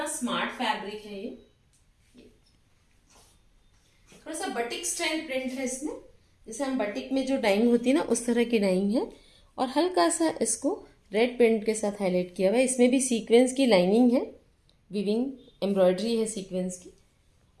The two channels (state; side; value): identical; both; correlation 1.00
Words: स्मार्ट फैब्रिक है ये। थोड़ा सा बटिक स्टाइल प्रिंट है इसमें, जैसे हम बटिक में जो डाइंग होती है ना उस तरह की डाइंग है, और हल्का सा इसको रेड प्रिंट के साथ हाईलाइट किया हुआ है। इसमें भी सीक्वेंस की लाइनिंग है, विविंग एम्ब्रॉयडरी है सीक्वेंस की,